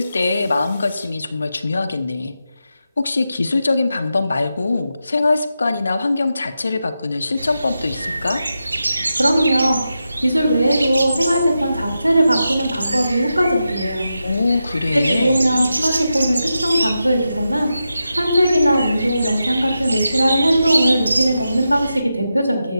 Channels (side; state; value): both; inverted; correlation -0.89